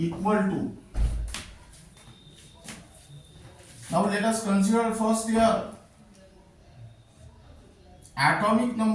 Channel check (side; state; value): both; identical; correlation 1.00